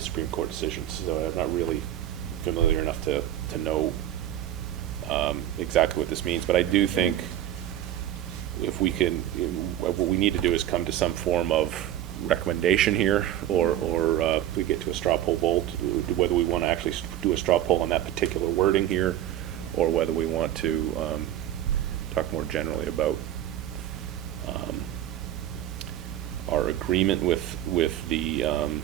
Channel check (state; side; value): quieter; left; 12.0 dB